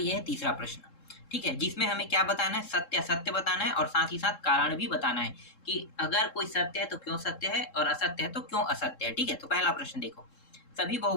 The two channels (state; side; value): late; right; 3.7 ms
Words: है तीसरा प्रश्न, ठीक है, जिसमें हमें क्या बताना है, सत्य असत्य बताना है और साथ ही साथ कारण भी बताना है कि अगर कोई सत्य है तो क्यों सत्य है और असत्य है तो क्यों असत्य है। ठीक है, तो पहला प्रश्न देखो, सभी